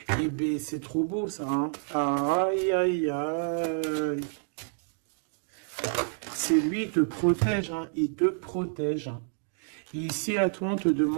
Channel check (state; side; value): silent; left; 59 dB below the other